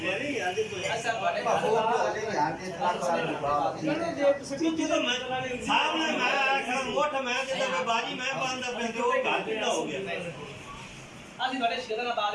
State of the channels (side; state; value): both; identical; correlation 1.00